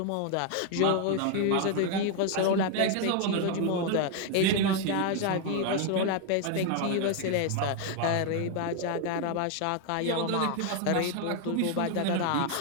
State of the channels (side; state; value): both; different; correlation 0.01